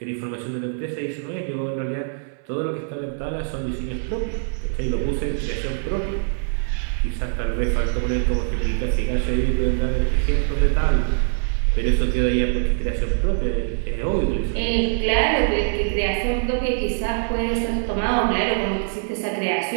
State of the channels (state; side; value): silent; left; 61 dB below the other